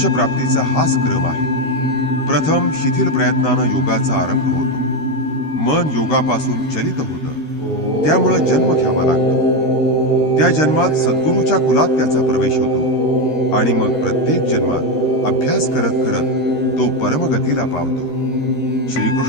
प्राप्तीचा हाच क्रम आहे. प्रथम शिथिल प्रयत्नानं योगाचा आरंभ होतो. मन योगापासून चलित होतं, त्यामुळे जन्म घ्यावा लागतो. त्या जन्मात सद्गुरूच्या कुलात त्याचा प्रवेश होतो आणि मग प्रत्येक जन्मात अभ्यास करत करत तो परमगतीला पावतो.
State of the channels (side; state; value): right; late; 13 ms